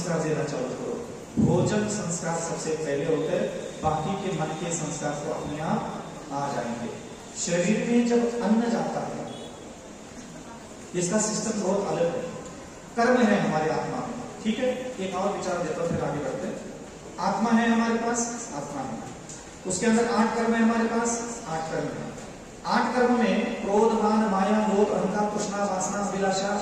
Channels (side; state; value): both; identical; correlation 1.00